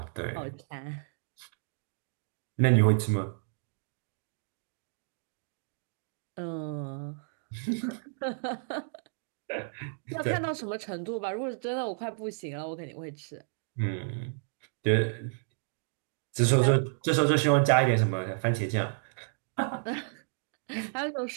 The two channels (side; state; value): left; silent; digital silence